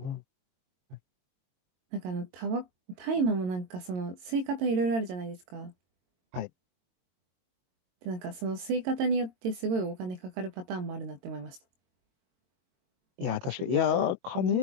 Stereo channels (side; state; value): left; late; 22 ms